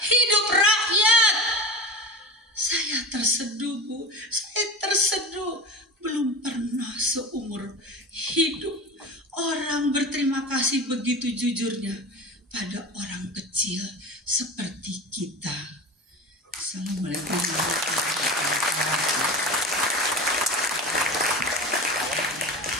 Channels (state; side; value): normal; both; correlation 0.31